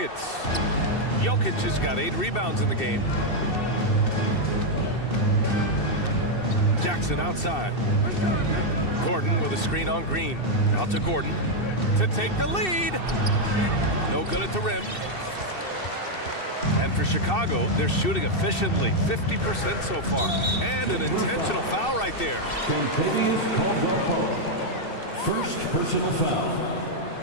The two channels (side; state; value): right; late; 2.7 ms